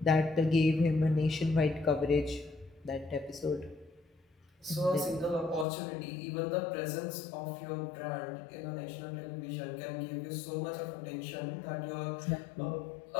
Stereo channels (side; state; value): right; drops out; at 5.7 s